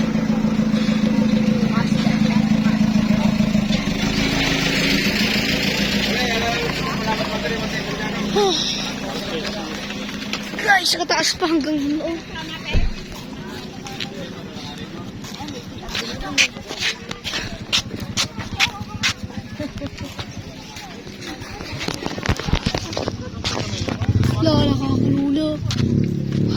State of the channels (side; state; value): both; identical; correlation 1.00